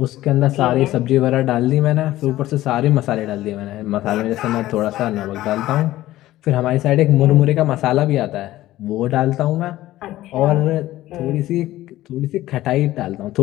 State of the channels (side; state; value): right; quieter; 15.5 dB